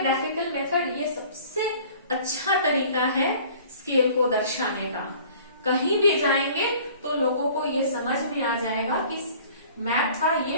मेथड। ये सबसे अच्छा तरीका है स्केल को दर्शाने का। कहीं भी जाएंगे तो लोगों को ये समझ में आ जाएगा कि मैप का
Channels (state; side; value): inverted; both; correlation -0.49